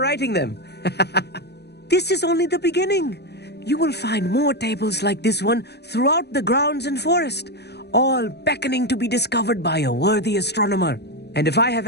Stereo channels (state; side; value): late; right; 0.48 ms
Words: them. This is only the beginning. You will find more tables like this one throughout the grounds and forest, all beckoning to be discovered by a worthy astronomer. And if I have